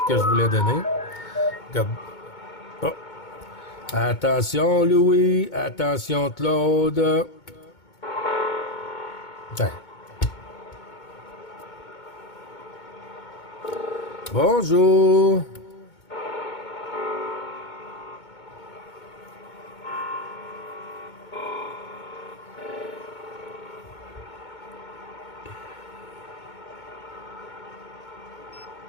que je voulais donner. Oh. Attention, Louis. Attention, Claude. Tiens. Bonjour.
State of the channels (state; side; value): late; right; 2.2 ms